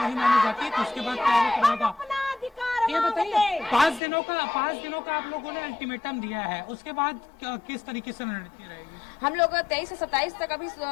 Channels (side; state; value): right; drops out; at 4.0 s